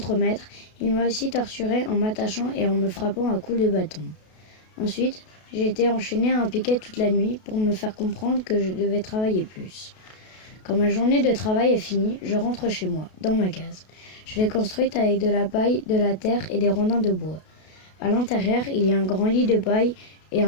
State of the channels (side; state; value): right; late; 32 ms